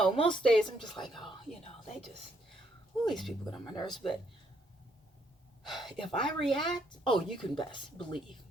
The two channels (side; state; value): both; normal; correlation 0.71